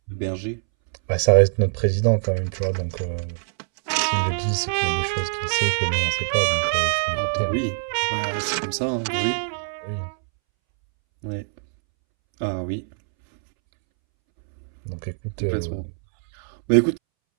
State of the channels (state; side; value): silent; left; 63 dB below the other